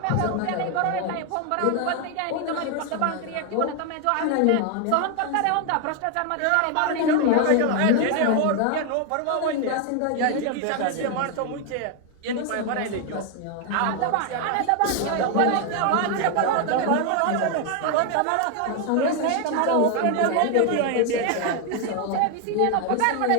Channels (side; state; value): both; different; correlation 0.01